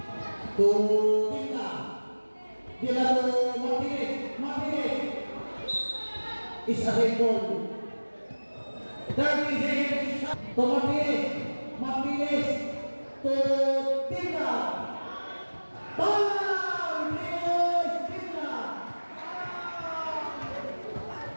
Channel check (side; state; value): both; inverted; correlation -1.00